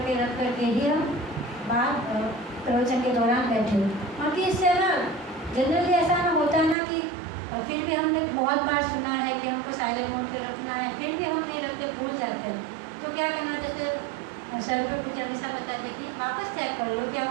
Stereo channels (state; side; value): drops out; left; at 6.8 s